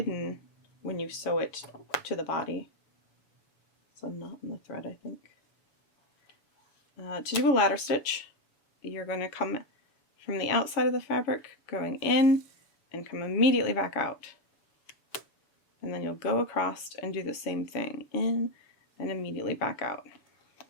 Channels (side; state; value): right; late; 7.0 ms